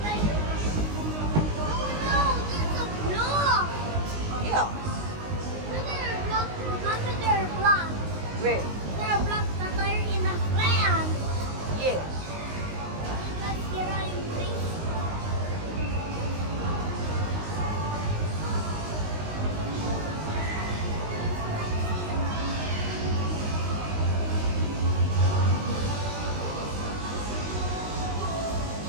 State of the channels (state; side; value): late; left; 19 ms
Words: Yeah. Where? Yes.